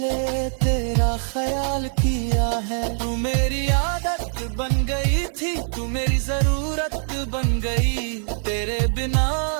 तेरा ख्याल किया है। तू मेरी आदत बन गई थी, तू मेरी जरूरत बन गई। तेरे बिना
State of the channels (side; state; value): left; silent; 63 dB below the other